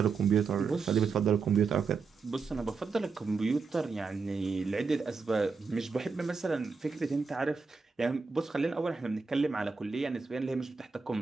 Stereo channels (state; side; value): quieter; left; 4.8 dB